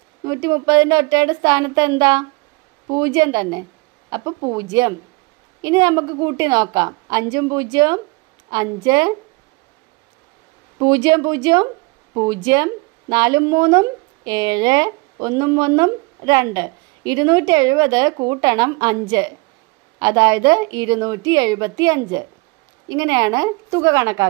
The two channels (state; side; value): quieter; left; 26.8 dB